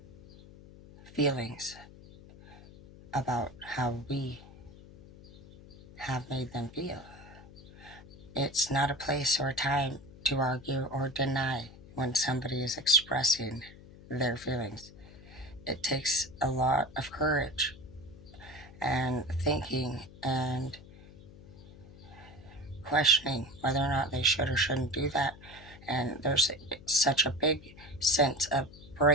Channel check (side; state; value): left; noise; hum, 19 dB below the sound